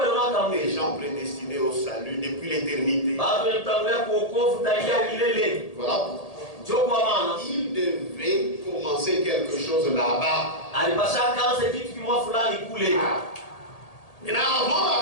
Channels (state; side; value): late; right; 1.8 ms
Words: kama des gens prédestinés au salut depuis l'éternité. bado mtangulia kuokovu tangia milele. Voilà pourquoi. Ndio kwa maana Il devait commencer quelque chose là-bas. alipasha kaanza kitu kimwa fulani kule. Maintenant, avant la